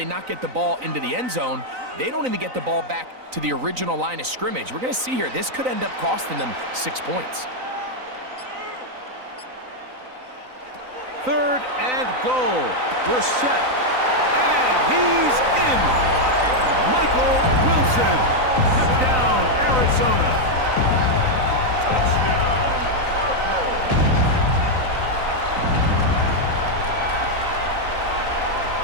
not get the ball into the end zone, they don't even get the ball back to the original line of scrimmage. We're going to see here, this could end up costing them 6 points. Third and goal. Brissett. And he's in. Michael Wilson. Touchdown, Arizona. Touchdown, Cardinals.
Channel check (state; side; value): late; left; 3.9 ms